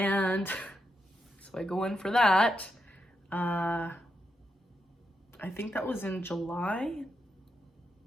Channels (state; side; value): normal; both; correlation 0.83